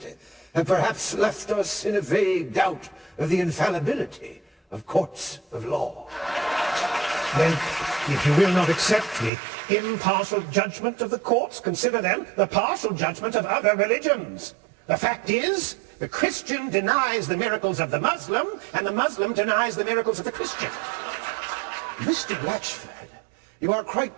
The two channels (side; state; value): left; drops out; at 9.3 s